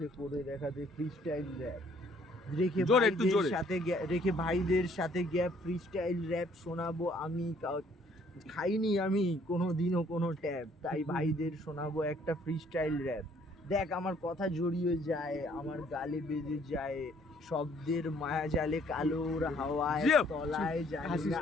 করে দেখাতে ফ্রিস্টাইল র্যাপ, রেখে ভাইদের সাথে গ্যাপ ফ্রিস্টাইল র্যাপ শোনাবো আমি। খাইনি আমি কোনোদিনও কোনো ট্যাব, তাই ভাইদের শোনাবো একটা ফ্রিস্টাইল র্যাপ। দেখ আমার কথা জড়িয়ে যায়, আমার গালে বেজে যায়, শব্দের মায়া জালে কালোর হাওয়ায় তলায় যায়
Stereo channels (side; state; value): both; normal; correlation 0.62